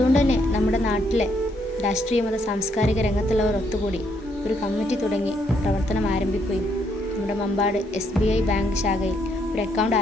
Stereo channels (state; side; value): normal; both; correlation 0.73